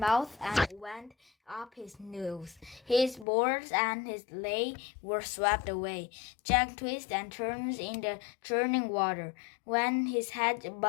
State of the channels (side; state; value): right; drops out; at 3.2 s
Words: and went up his nose. His boards and his lei were swept away. Jack twisted and turned in the churning water. When his head